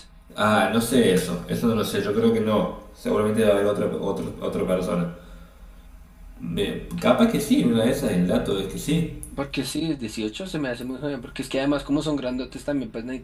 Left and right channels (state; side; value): identical; both; correlation 1.00